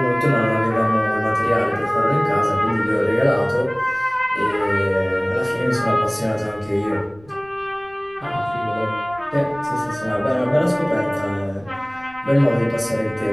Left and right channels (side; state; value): left; noise; rumble, 25 dB below the sound